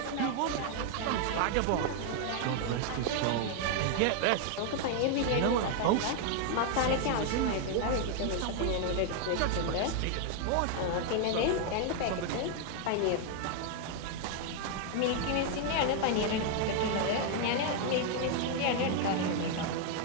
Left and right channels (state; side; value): different; both; correlation 0.00